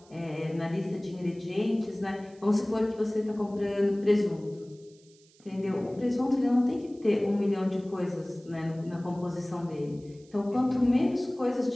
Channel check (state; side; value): noise; right; hiss, 29 dB below the sound